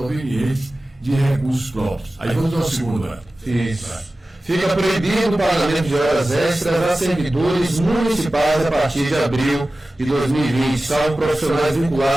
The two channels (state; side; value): normal; both; correlation 0.96